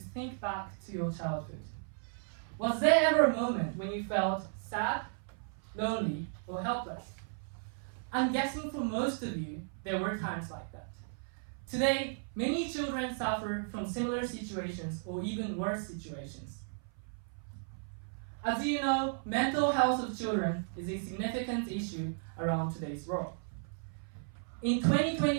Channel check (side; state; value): left; silent; 55 dB below the other